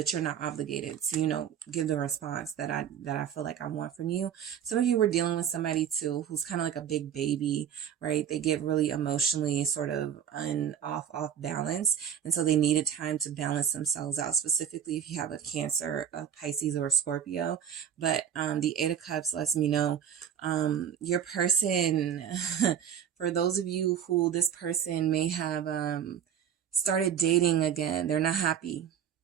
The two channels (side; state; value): left; quieter; 8.9 dB